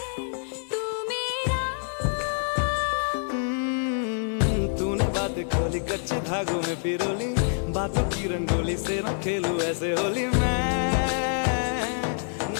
तू मेरा। तूने बातें खोली कच्चे धागों में पिरोली, बातों की रंगोली से न खेलूं ऐसे होली मैं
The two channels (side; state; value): right; silent; digital silence